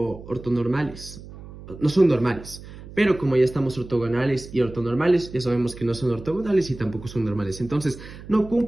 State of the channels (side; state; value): right; noise; hum, 15 dB below the sound